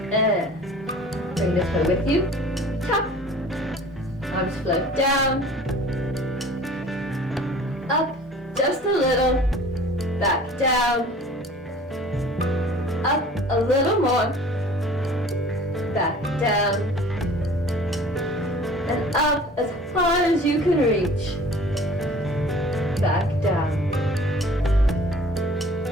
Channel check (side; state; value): both; normal; correlation 0.47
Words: And bring the toe with you. Tap. Arms float down. Up just a little. Back down. Up a little more. Back down. And up as far as you can reach. Back down.